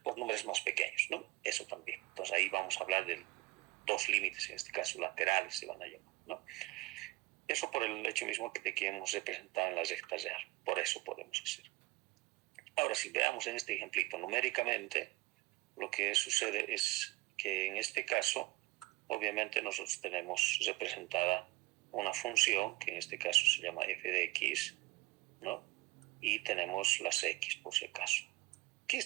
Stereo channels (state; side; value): quieter; left; 21.5 dB